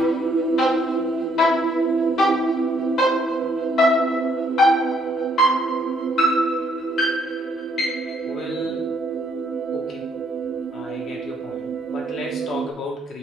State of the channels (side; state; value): both; normal; correlation 0.70